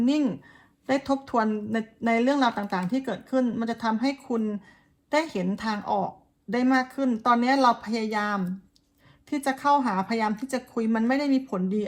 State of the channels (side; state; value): both; identical; correlation 1.00